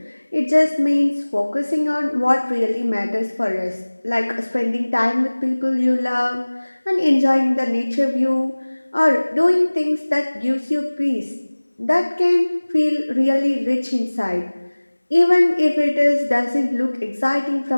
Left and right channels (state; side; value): inverted; both; correlation -1.00